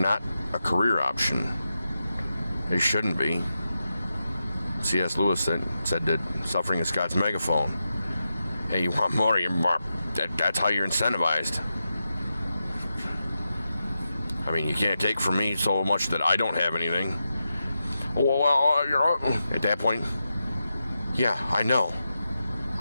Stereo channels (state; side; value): inverted; both; correlation -0.89